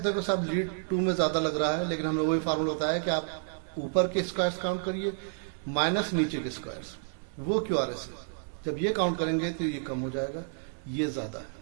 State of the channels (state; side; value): silent; left; digital silence